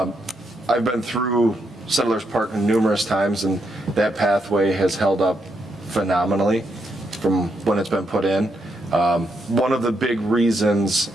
been through Settlers Park numerous times, and that pathway has held up phenomenally from when it's been put in. One of the big reasons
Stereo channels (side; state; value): both; normal; correlation 0.79